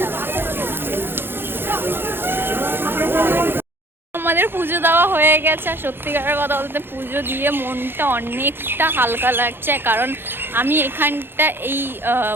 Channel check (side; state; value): left; late; 0.10 ms